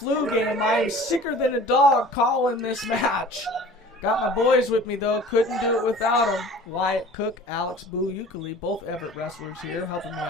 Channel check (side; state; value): both; normal; correlation 0.45